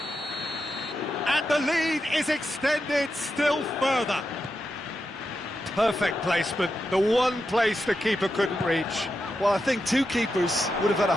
And the lead is extended still further. Perfect placement, the one place the keeper couldn't reach. Well, I think 2 keepers would have had a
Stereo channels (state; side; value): normal; both; correlation 0.87